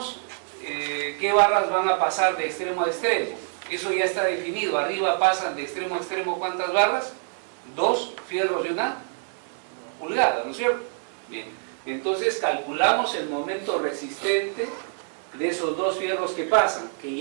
qué barras van a pasar de extremo a extremo. Eso ya está definido. Arriba pasan de extremo a extremo ¿cuántas barras? 2 fierros de 1 pulgada, ¿no es cierto? Bien, entonces calculamos el momento resistente de esos 2 fierros que pasan, que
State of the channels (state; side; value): silent; left; 61 dB below the other